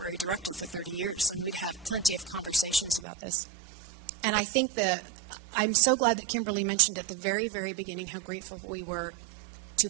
director for 30 years, and we'd have plenty of conversations about this. And I think that I'm so glad that Kimberly mentioned at the very, very beginning how grateful we were to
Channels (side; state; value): left; drops out; at 3.1 s